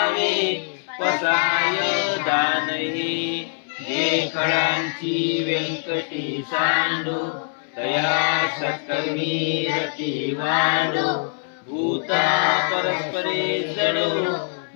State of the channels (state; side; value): silent; right; 61 dB below the other